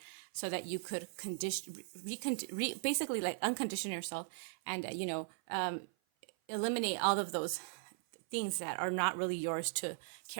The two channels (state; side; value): silent; left; 52 dB below the other